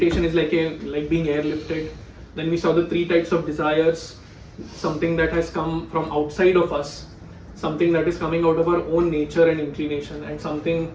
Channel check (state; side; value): identical; both; correlation 1.00